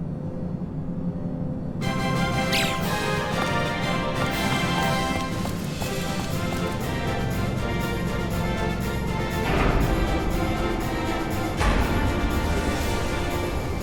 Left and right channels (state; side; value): identical; both; correlation 1.00